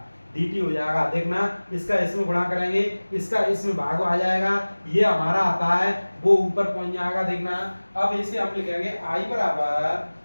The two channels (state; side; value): inverted; both; correlation -1.00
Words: देखना इसका इसमें गुणा करेंगे, इसका इसमें भाग आ जाएगा, ये हमारा आता है वो ऊपर पहुंच जाएगा। देखना अब इसे हम लिखेंगे i बराबर